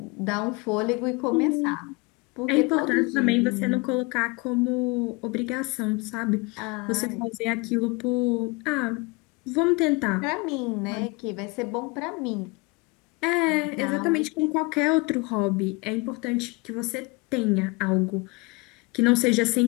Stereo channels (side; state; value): right; quieter; 26.8 dB